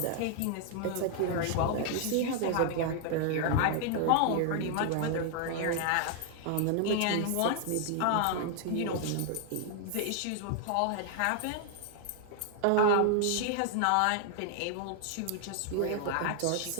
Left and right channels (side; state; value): both; different; correlation 0.00